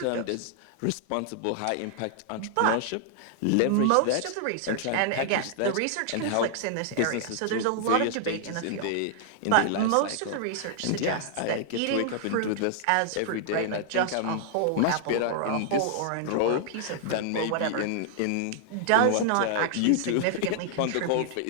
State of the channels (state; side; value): different; both; correlation -0.01